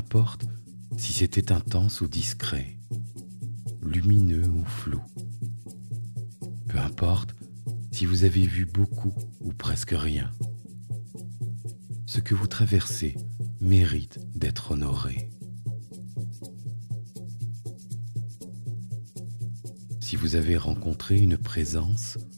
si c'était intense ou discret, lumineux ou flou, peu importe si vous avez vu beaucoup ou presque rien, ce que vous traversez mérite d'être honoré. Si vous avez rencontré une présence,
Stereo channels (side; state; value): both; inverted; correlation -1.00